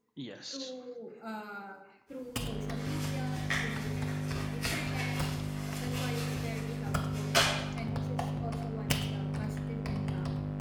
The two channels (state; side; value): identical; both; correlation 1.00